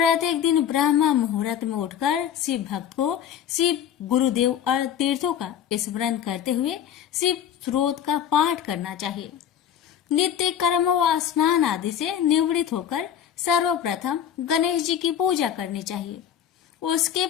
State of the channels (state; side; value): quieter; right; 9.4 dB